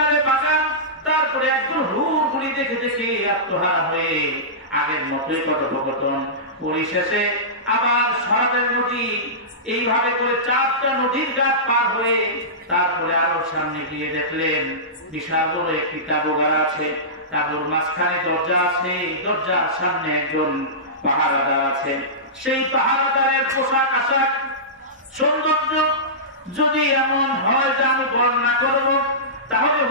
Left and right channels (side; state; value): both; normal; correlation -0.19